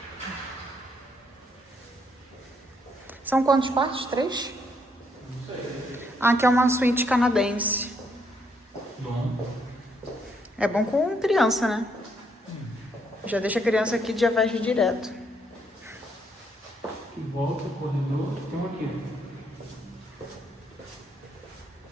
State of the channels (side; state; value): both; normal; correlation 0.73